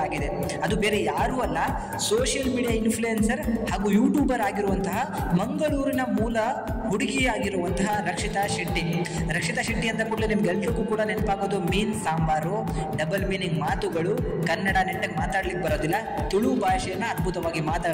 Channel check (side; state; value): both; identical; correlation 1.00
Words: ಆಗಿದೆ. ಅದು ಬೇರೆ ಯಾರೂ ಅಲ್ಲ, ಸೋಷಿಯಲ್ ಮೀಡಿಯಾ ಇನ್ಫ್ಲೂಯೆನ್ಸರ್ ಹಾಗೂ ಯೂಟ್ಯೂಬರ್ ಆಗಿರುವಂತಹ ಮಂಗಳೂರಿನ ಮೂಲ ಹುಡುಗಿಯಾಗಿರುವಂತಹ ರಕ್ಷಿತಾ ಶೆಟ್ಟಿ ಅಂತ ಕೂಡಲೇ ನಿಮ್ಗೆಲ್ರಿಗೂ ಕೂಡ ನೆನಪಾಗೋದು ಮೀನ್ ಸಾಂಬಾರು, ಡಬಲ್ ಮೀನಿಂಗ್ ಮಾತುಗಳು, ಕನ್ನಡ ನೆಟ್ಟಗೆ ಮಾತಾಡ್ಲಿಕ್ಕೆ ಬರೋದಿಲ್ಲ, ತುಳು ಭಾಷೆಯನ್ನ ಅದ್ಭುತವಾಗಿ